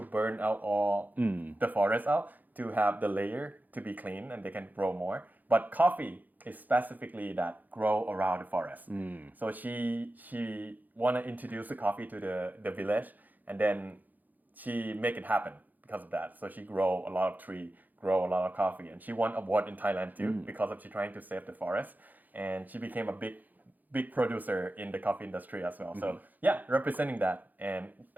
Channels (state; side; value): late; left; 0.083 ms